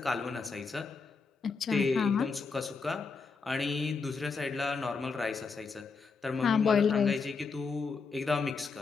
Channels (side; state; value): right; quieter; 4.8 dB